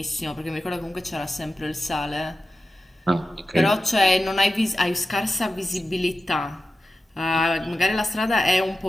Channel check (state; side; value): normal; both; correlation 0.93